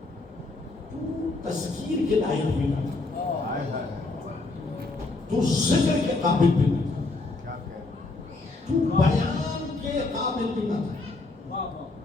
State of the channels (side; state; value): right; quieter; 3.3 dB